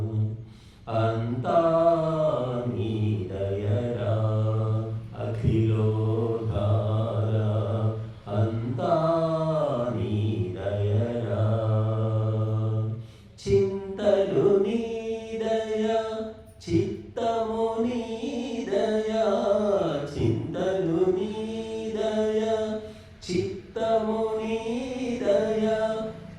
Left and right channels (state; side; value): identical; both; correlation 1.00